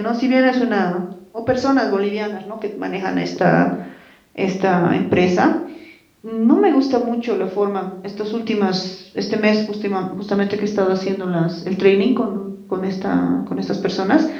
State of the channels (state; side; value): identical; both; correlation 1.00